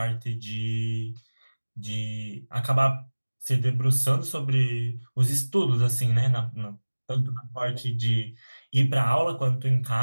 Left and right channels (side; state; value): both; inverted; correlation -1.00